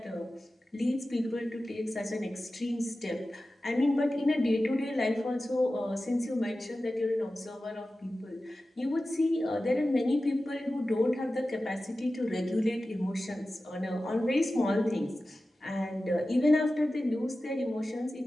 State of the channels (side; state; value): both; normal; correlation 0.95